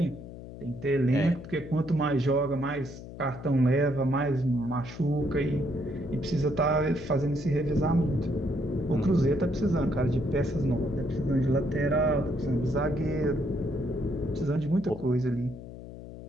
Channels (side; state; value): left; noise; hum, 13 dB below the sound